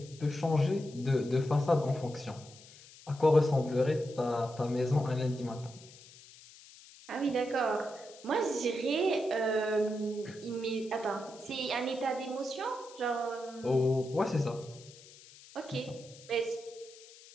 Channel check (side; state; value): left; noise; hiss, 21 dB below the sound